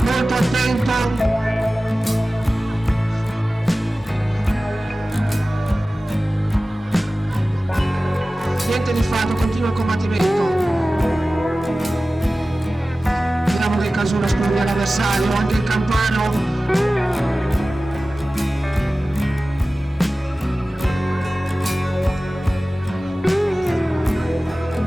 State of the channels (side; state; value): both; normal; correlation 0.96